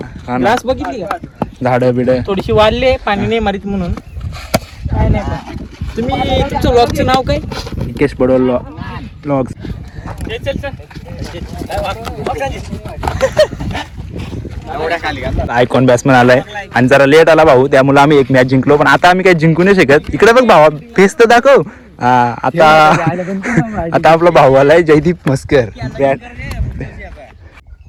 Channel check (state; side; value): identical; both; correlation 1.00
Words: ग्लास बघितली का. झाडं बिड थोडीशी वाढले. पाणी नाही मारित म्हणून काय नाही. तुम्ही तुमचं व्लॉगचं नाव काय. निकेश पडोल व्लॉग्स. आयकॉन बॅट्समन आलाय. आणि जरा लेट आला भाऊ. त्यामुळे आम्ही एक मॅच जिंकलो. पण आता आम्ही काही जिंकू नाही शकत. इकडे बघ भावा फेस तर दाखव. आता आपला भाऊ आलाय जयदीप मस्कर.